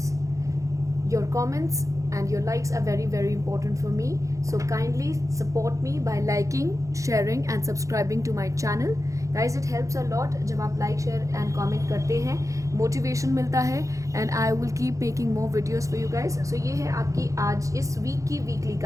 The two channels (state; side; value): late; left; 0.15 ms